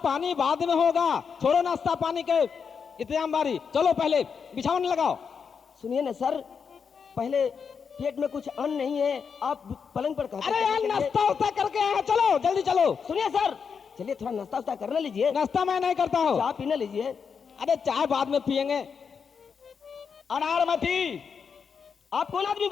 पानी बाद में होगा, छोड़ो नाश्ता पानी के इंतजाम बारी। चलो पहले बिछावन लगाओ। सुनिए ना सर, पहले पेट में कुछ अन्न नहीं है, आप पलंग पर कहते अरे यार, नाश्ता उस्ता करके आए हैं, चलो जल्दी चलो। सुनिए सर, चलिए थोड़ा नाश्ता उस्ता करने लीजिए। नाश्ता मैं नहीं करता हूँ। चाय पीने लीजिए। अरे चाय बाद में पियेंगे। अनारमती, आप कौन आदमी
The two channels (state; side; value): quieter; right; 6.2 dB